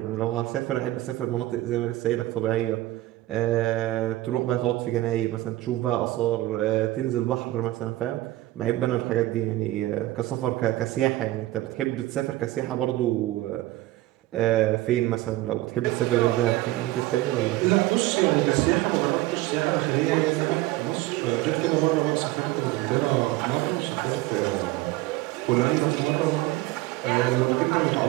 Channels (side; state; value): left; quieter; 17.1 dB